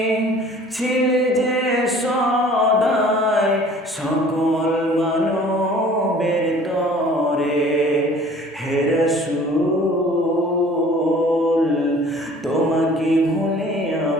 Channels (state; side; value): normal; both; correlation 0.50